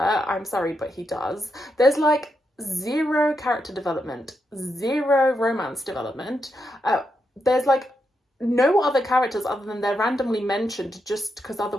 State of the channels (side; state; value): both; normal; correlation 0.83